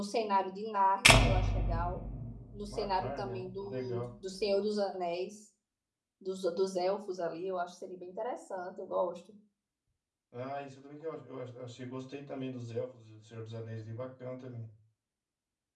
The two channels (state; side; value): identical; both; correlation 1.00